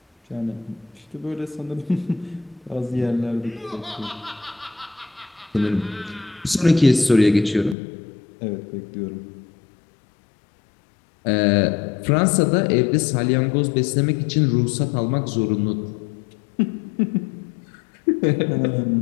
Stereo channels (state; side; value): drops out; right; at 7.8 s